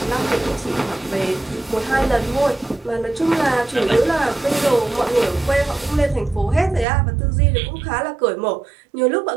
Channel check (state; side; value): drops out; left; at 6.9 s